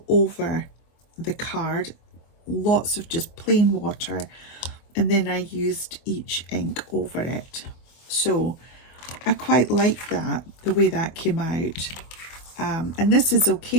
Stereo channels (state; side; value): late; right; 24 ms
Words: over the card, lots of just plain water, and then I used each ink over it. So I quite like that, the way that came out. And this is